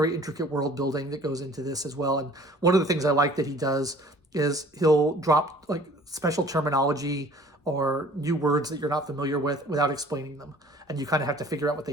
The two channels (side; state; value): both; normal; correlation 0.51